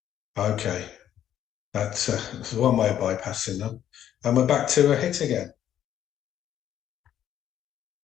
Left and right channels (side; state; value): right; quieter; 10.7 dB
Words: okay. That's one way of bypassing them. And we're back to a hit again.